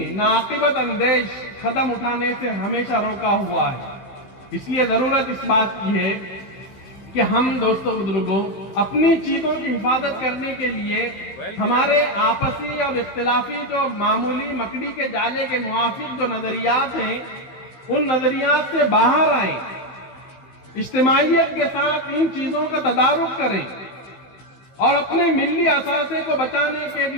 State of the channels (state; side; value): late; right; 15 ms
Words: ناقبت اندیش قدم اٹھانے سے ہمیشہ روکا ہوا ہے۔ اس لیے ضرورت اس بات کی ہے کہ ہم دوستوں بزرگوں اپنی چیزوں کی حفاظت کرنے کے لیے ہمارے آپسی اور اختلافی جو معمولی مکڑی کے جالے کے موافق جو نظریات ہیں، ان نظریات سے باہر آئیں، اجتماعیت کے ساتھ ان چیزوں کا تدارک کریں، اور اپنے ملی اثاثے کو بچانے کے